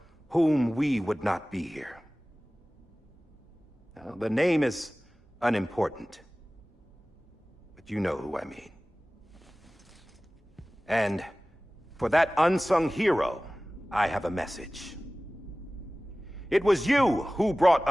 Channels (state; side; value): normal; both; correlation 0.98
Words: whom we would not be here. Now, the name is unimportant, but you know who I mean. And for that unsung hero, I have a message. It was you who brought